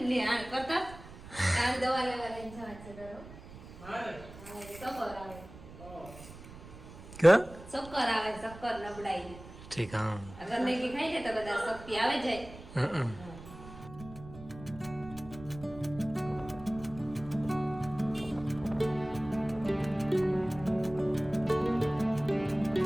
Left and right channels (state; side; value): noise; right; rumble, 16 dB below the sound